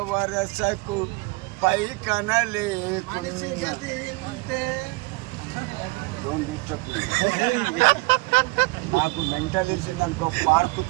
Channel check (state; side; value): quieter; left; 25.6 dB